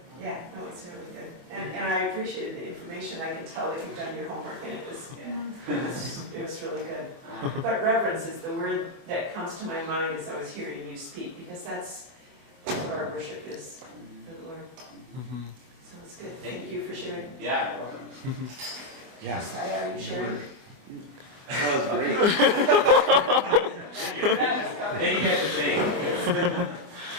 yeah, no, it's really good. And I appreciated the information. I can tell that you've done your homework and it was really good. But reverence is the word that comes to my mind as I was hearing you speak, because that's what our worship is for the Lord. So it's good. Thank you for sharing. Yeah, you're welcome. Yes. Are you sharing? That was great. Thank you for saying.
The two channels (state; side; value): late; left; 24 ms